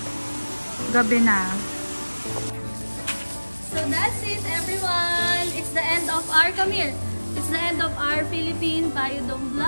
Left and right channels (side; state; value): both; inverted; correlation -1.00